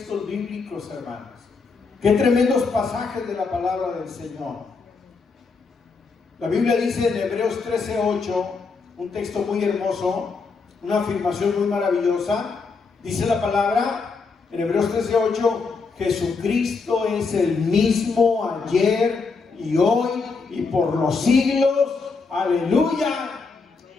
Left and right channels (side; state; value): right; quieter; 4.6 dB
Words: bíblicos, hermanos. Qué tremendos pasajes de la palabra del Señor. La Biblia dice en Hebreos 13:8, un texto muy hermoso, una afirmación muy maravillosa. Dice la palabra en Hebreos 13:8: Jesucristo es el mismo ayer y hoy y por los siglos. Aleluya.